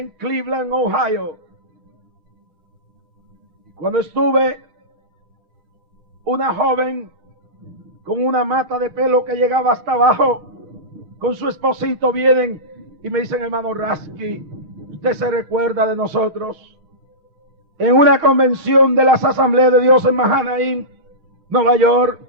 Cleveland, Ohio. Cuando estuve, una joven con una mata de pelo que llegaba hasta abajo, con su esposito, vienen y me dicen, hermano Rasky, ¿usted se recuerda de nosotros? En una convención de las Asambleas de Dios en Mahanaim, Nueva York,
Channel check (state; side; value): late; left; 6.4 ms